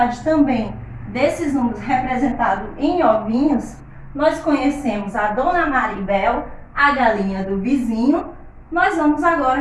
também desses números representados em ovinhos, nós conhecemos a Dona Maribel, a galinha do vizinho. Nós vamos agora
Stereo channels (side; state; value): both; identical; correlation 1.00